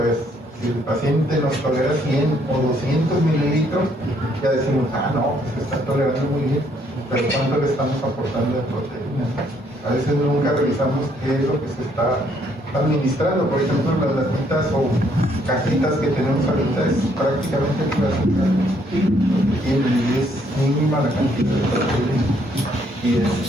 es, si el paciente nos tolera 100 o 200 mililitros, ya decimos, no, pues está tolerando muy bien, pero ¿cuánto le estamos aportando de proteína? A veces nunca revisamos qué es lo que se está administrando. Por ejemplo, las latitas o cajitas que tenemos ahorita es prácticamente pura azúcar, y es mínima la cantidad de proteína.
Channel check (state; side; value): normal; both; correlation 0.68